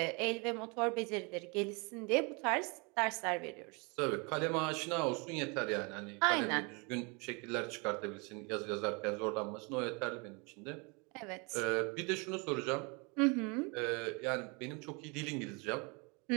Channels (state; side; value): quieter; left; 30.8 dB